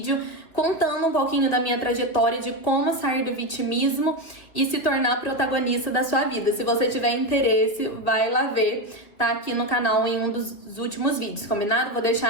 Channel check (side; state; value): right; late; 2.9 ms